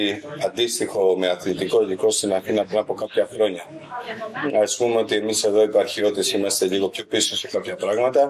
αντίστοιχο με αθλητικό υλικό στην Αθήνα πριν από κάποια χρόνια. Ας πούμε ότι εμείς εδώ οι επαρχιώτες είμαστε λίγο πιο πίσω σε κάποια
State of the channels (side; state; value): both; identical; correlation 1.00